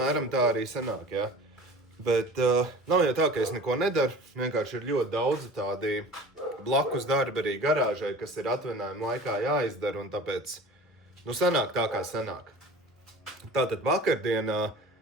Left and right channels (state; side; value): normal; both; correlation 0.40